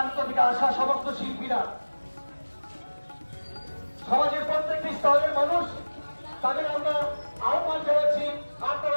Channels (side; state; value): both; inverted; correlation -1.00